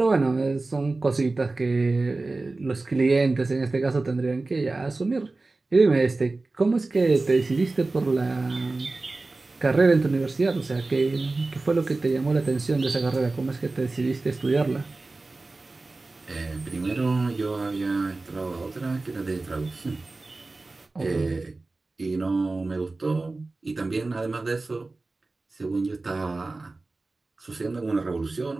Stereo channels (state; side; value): quieter; left; 3.4 dB